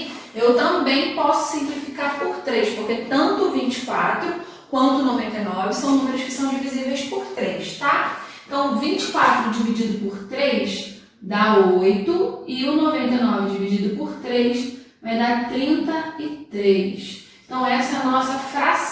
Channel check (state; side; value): identical; both; correlation 1.00